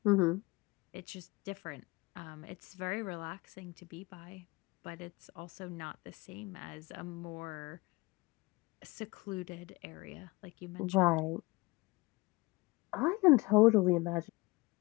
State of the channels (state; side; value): quieter; right; 23.7 dB